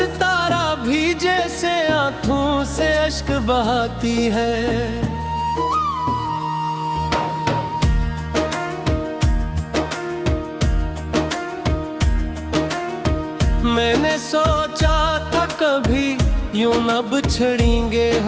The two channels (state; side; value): identical; both; correlation 1.00